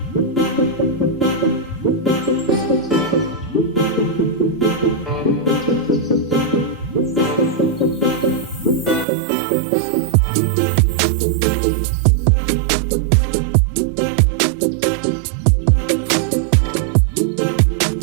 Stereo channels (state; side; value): drops out; left; at 9.1 s